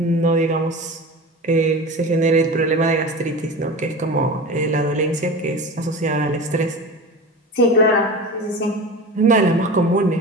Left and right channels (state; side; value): normal; both; correlation 0.31